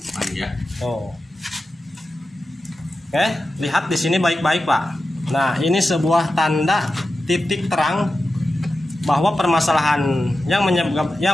Oh. Oke, lihat di sini baik-baik, Pak. Nah, ini sebuah tanda titik terang bahwa permasalahan yang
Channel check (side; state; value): both; normal; correlation 0.92